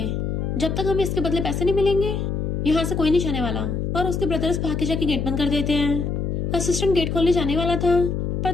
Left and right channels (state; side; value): noise; left; hum, 1 dB below the sound